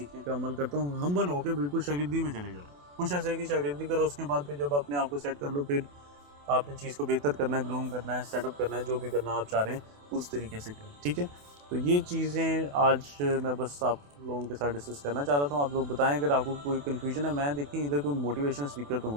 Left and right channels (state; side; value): late; left; 28 ms